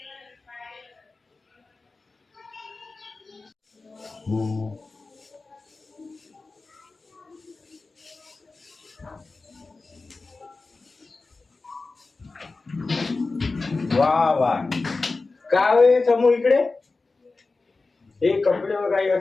वा वा काय समोर इकडे हे कपडे काही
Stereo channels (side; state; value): right; quieter; 3.7 dB